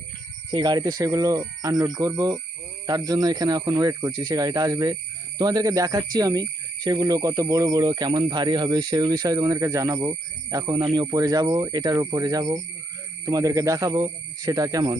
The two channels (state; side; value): normal; both; correlation 0.77